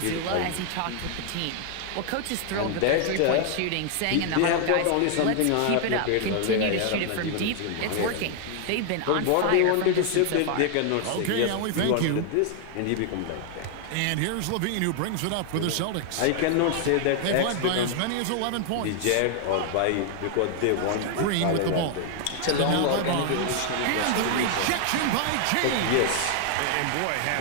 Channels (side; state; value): both; different; correlation 0.00